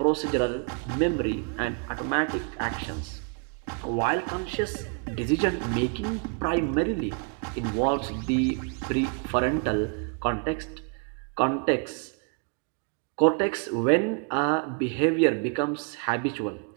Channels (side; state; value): left; quieter; 36.2 dB